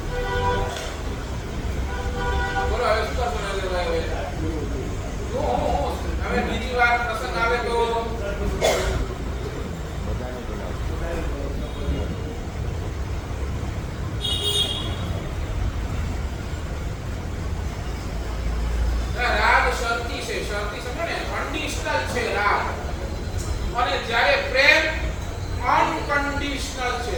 બોલો હવે શું કરશો નરેન્દ્રભાઈ? હવે બીજી વાર પ્રસંગ આવે તો રાગ શરતી છે. શરતી સમજો ને, કન્ડિશનલ છે રાગ. અને જ્યારે પ્રેમ અનકન્ડિશનલ છે.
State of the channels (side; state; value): both; identical; correlation 1.00